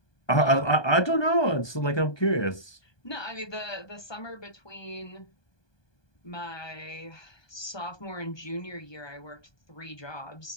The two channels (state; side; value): late; right; 1.2 ms